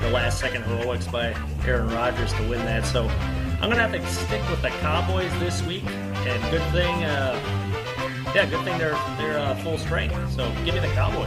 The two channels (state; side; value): identical; both; correlation 1.00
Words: a last-second heroics by Aaron Rodgers to win that. So I'm going to have to stick with the Cowboys this week, and good thing they're full strength. So give me the